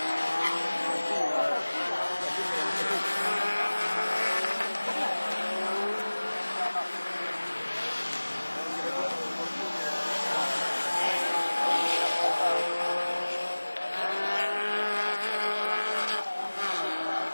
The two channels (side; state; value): both; inverted; correlation -1.00